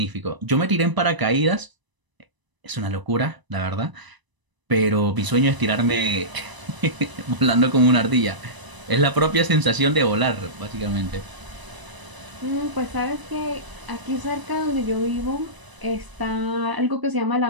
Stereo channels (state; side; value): late; left; 1.0 ms